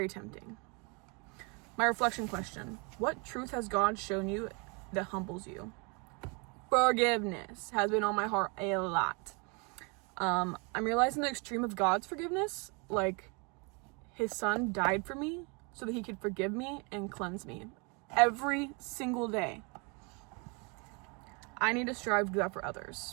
tempting. My reflection question: what truth has God shown you that humbles you? Forgiveness has been on my heart a lot. I'm realizing the extreme of God's forgiveness, like his son died for me so that he could forgive me and cleanse me every single day. I need to strive to do that for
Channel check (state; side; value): quieter; left; 32.2 dB